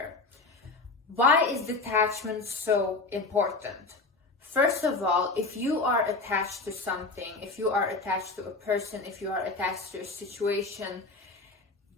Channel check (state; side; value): quieter; right; 3.6 dB